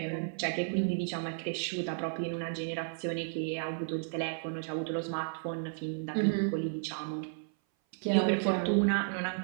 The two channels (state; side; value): silent; left; 56 dB below the other